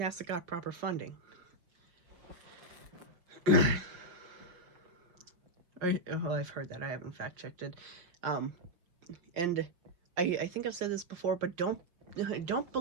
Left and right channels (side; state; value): left; late; 5.9 ms